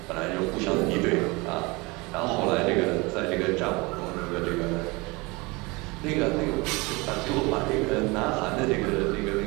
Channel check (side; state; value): left; quieter; 25.2 dB